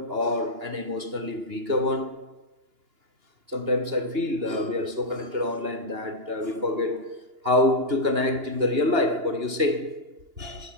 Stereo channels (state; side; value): late; left; 2.8 ms